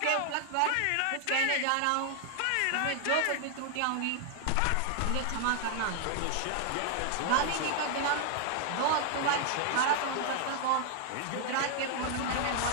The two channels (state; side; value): different; both; correlation 0.00